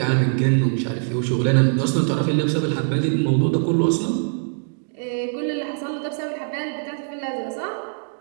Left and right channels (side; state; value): left; silent; digital silence